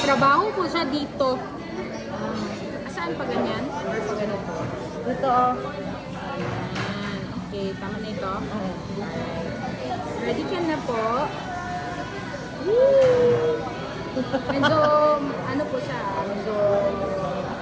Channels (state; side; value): identical; both; correlation 1.00